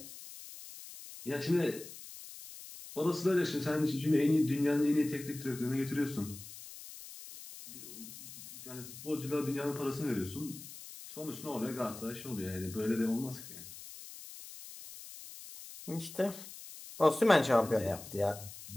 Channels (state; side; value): noise; left; hiss, 14 dB below the sound